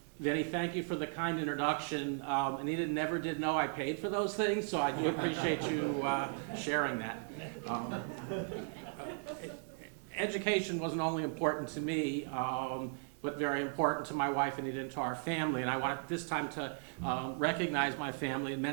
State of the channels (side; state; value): left; silent; 53 dB below the other